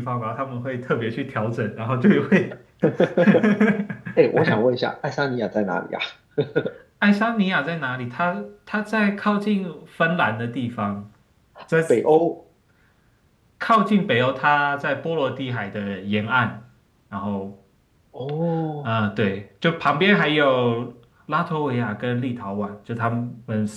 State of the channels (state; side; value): identical; both; correlation 1.00